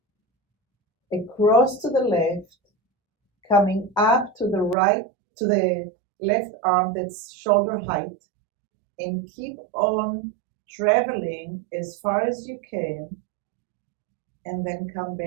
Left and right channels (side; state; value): left; drops out; at 4.8 s